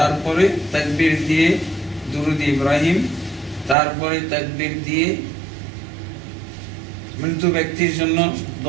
তাকবীর দিয়ে দুরূদ ইব্রাহিম, তারপরে তাকবীর দিয়ে মৃত্যু ব্যক্তির জন্য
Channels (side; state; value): left; drops out; at 3.8 s